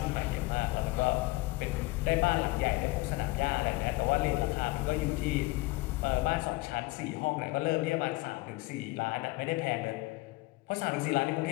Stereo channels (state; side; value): quieter; right; 21.6 dB